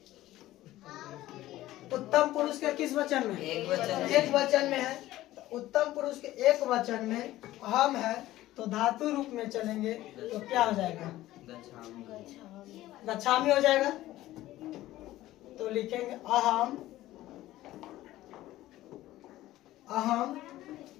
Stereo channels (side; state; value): right; quieter; 15.5 dB